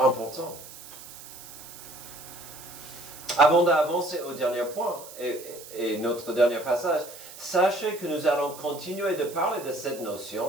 Avant d'avancer au dernier point et notre dernier passage, sachez que nous allons continuer de parler de cette notion,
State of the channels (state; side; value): noise; right; hiss, 16 dB below the sound